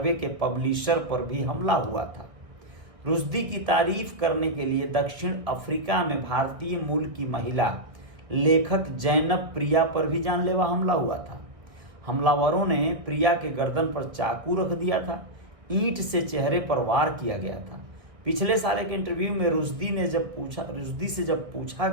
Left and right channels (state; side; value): late; left; 1.4 ms